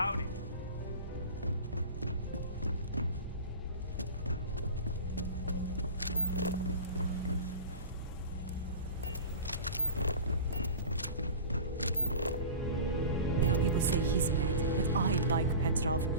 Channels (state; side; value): inverted; both; correlation -0.34